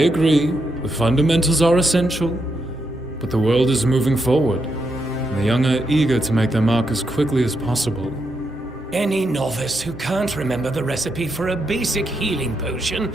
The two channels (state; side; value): normal; both; correlation 0.81